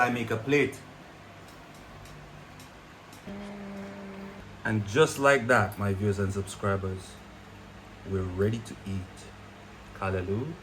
make a plate. And just like that, my viewers and subscribers, we're ready to eat kalaloo,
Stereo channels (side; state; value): both; identical; correlation 1.00